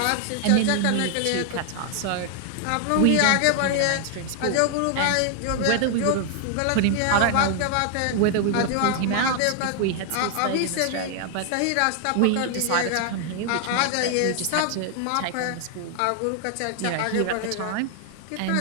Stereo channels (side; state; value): both; different; correlation 0.00